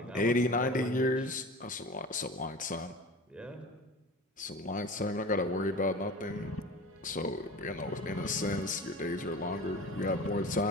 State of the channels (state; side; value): normal; both; correlation 0.36